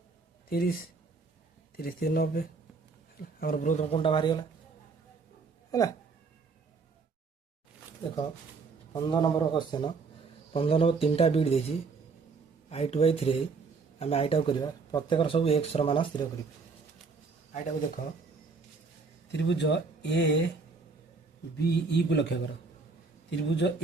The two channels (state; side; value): quieter; left; 4.6 dB